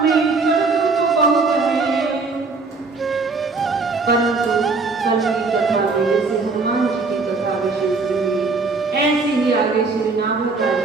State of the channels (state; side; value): quieter; left; 4.1 dB